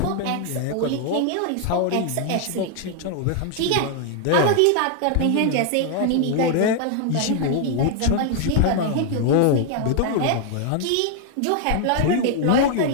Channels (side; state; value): both; different; correlation 0.00